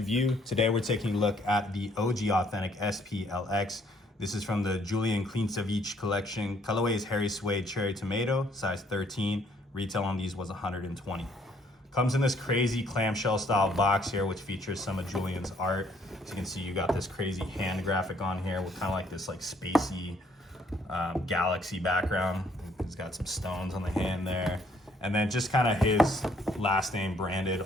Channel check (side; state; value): both; normal; correlation 0.65